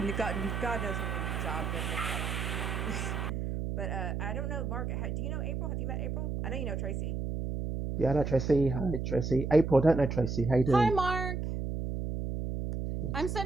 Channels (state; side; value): noise; right; hum, 2 dB below the sound